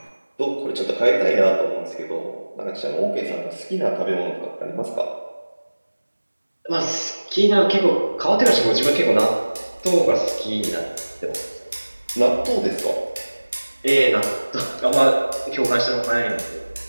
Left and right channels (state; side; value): inverted; both; correlation -1.00